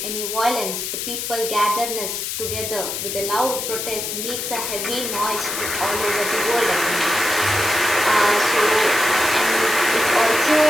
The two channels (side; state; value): left; noise; hiss, 4 dB below the sound